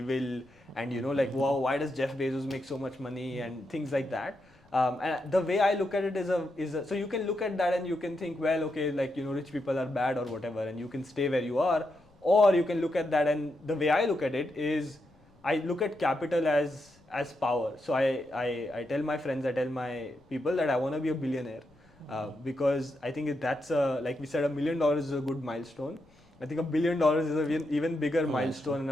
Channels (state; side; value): noise; left; rumble, 30 dB below the sound